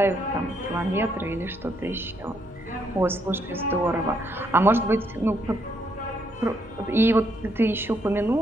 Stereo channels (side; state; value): right; noise; hum, 23 dB below the sound